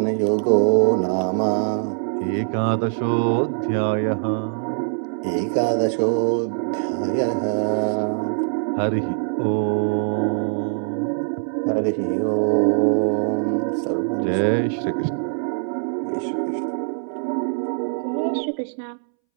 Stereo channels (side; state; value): left; silent; 64 dB below the other